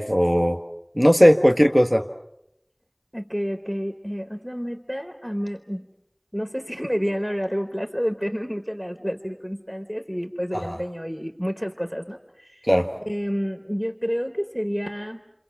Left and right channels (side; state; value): both; identical; correlation 1.00